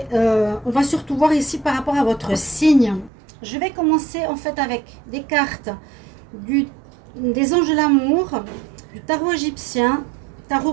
on va surtout voir ici par rapport à votre signe. Je vais commencer en fait avec des cartes des anges de l'amour, du tarot égyptien,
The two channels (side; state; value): left; drops out; at 3.1 s